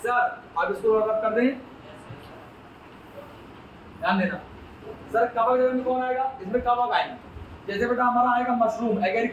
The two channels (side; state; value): both; identical; correlation 1.00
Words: अब इसको रब कर दें, ध्यान देना। सर कवक जगत में कौन आएगा? इसमें कवक आएंगे। जैसे बेटा हमारा आएगा मशरूम,